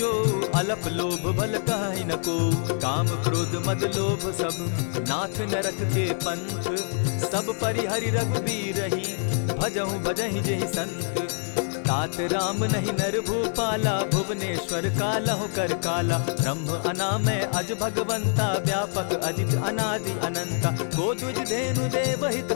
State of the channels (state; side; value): silent; right; 61 dB below the other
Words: अलप लोभ बल कहि न को। काम क्रोध मद लोभ सब, नाथ नरक के पंथ। सब परिहरि रघुबीरहि, भजहु भजहि जेहि संत। तात राम नहीं नर भूपाला, भुवनेश्वर कालहु कर काला। ब्रह्म अनामय अज भगवंता, व्यापक अजित अनादि अनंता। गोदुज धेनु देव